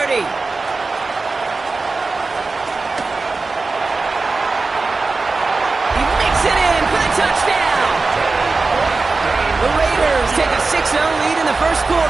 He makes it in for the touchdown. The Raiders take a 6-0 lead in the first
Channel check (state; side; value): quieter; left; 3.9 dB